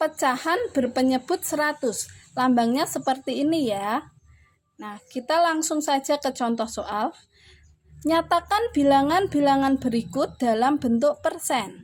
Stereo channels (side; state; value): both; identical; correlation 1.00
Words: pecahan berpenyebut 100. Lambangnya seperti ini ya. Nah, kita langsung saja ke contoh soal. Nyatakan bilangan-bilangan berikut dalam bentuk